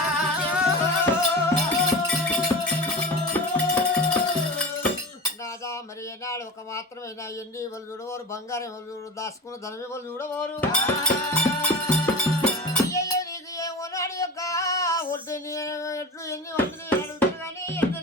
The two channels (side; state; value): both; normal; correlation 0.31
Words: మరి ఏనాడు ఒక మాత్రమైనా ఎండి వాళ్ళు చూడవారు బంగారం వాళ్ళు చూడు దాచుకున్న ధనమే వాళ్ళు చూడవారు అయ్యయ్యో నీకు ఏమోనాడు యొక్క ఒడ్డు ఎట్లు ఎన్ని వంటలు అడుగుతారు కానీ ఎన్ని